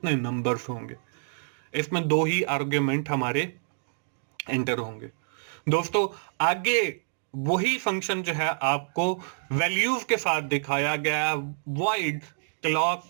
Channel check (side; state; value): left; silent; digital silence